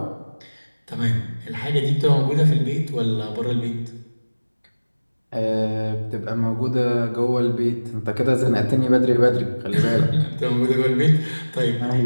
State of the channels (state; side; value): inverted; both; correlation -1.00